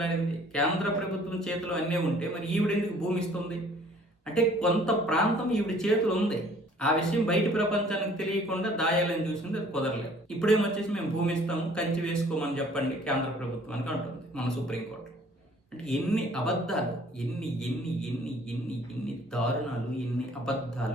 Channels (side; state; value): both; normal; correlation 0.55